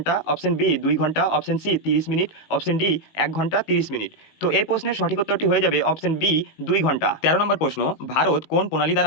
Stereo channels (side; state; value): right; late; 19 ms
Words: অপশন বি 2 ঘন্টা, option C 30 minute, option D 1 ঘন্টা 30 মিনিট। তো এই প্রশ্নের সঠিক উত্তরটি হয়ে যাবে অপশন বি 2 ঘন্টা। 13 নম্বর প্রশ্ন, ভারত কোন প্রণালী